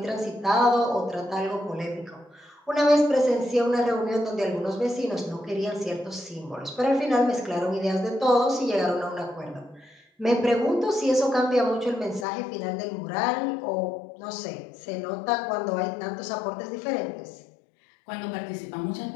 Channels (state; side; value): drops out; right; at 12.2 s